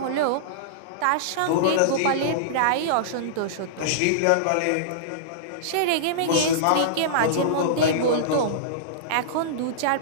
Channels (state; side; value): different; both; correlation -0.03